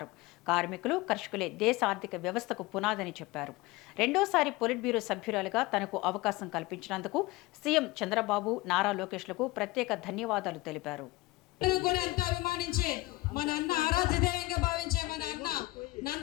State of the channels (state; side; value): quieter; right; 20.3 dB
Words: కార్మికులు, కర్షకులే దేశ ఆర్థిక వ్యవస్థకు పునాదని చెప్పారు. రెండోసారి పొలిట్ బ్యూరో సభ్యురాలుగా తనకు అవకాశం కల్పించినందుకు సీఎం చంద్రబాబు, నారా లోకేష్లకు ప్రత్యేక ధన్యవాదాలు తెలిపారు. కూడా ఎంతో అభిమానించే మన అన్న ఆరాధ్య దైవంగా భావించే మన అన్న